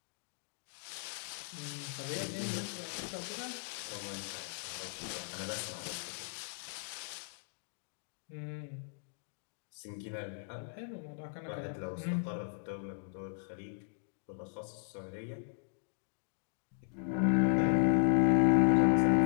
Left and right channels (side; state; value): right; silent; digital silence